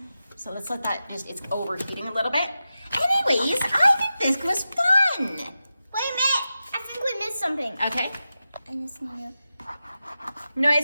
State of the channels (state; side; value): inverted; both; correlation -0.92